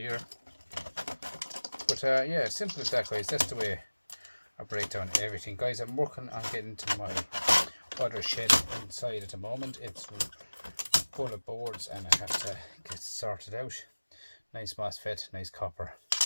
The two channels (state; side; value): inverted; both; correlation -1.00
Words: But yeah, simple as that, guys. That's the way I break down everything, guys. I'm working on getting to my other shed inside at the moment. It's full of boards and I have to get sorted out. Nice MOSFET, nice copper.